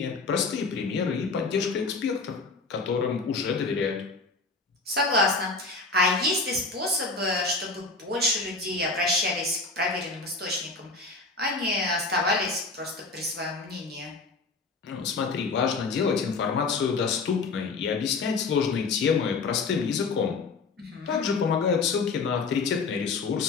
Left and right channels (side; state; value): right; quieter; 4.0 dB